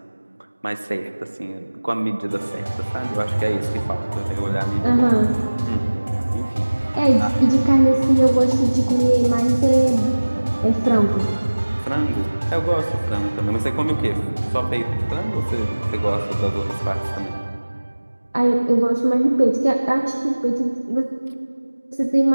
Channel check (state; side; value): inverted; both; correlation -1.00